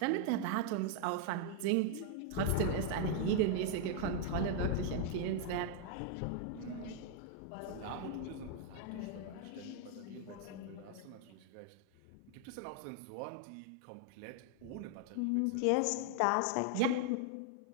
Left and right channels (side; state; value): both; different; correlation 0.00